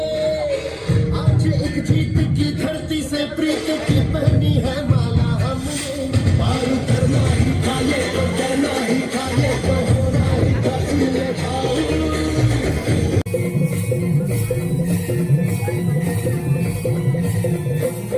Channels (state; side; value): identical; both; correlation 1.00